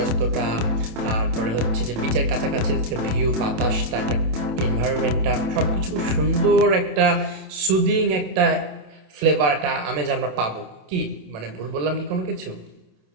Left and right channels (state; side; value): late; left; 27 ms